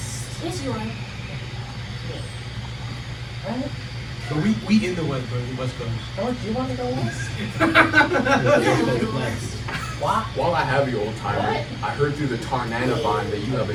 Yes, you are. Right? But we in the West, bro. The West Coast. Oh, do you want to go west? Why? While I have you, old timer, What? I heard through the Tarnana vine that you have a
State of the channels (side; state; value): both; identical; correlation 1.00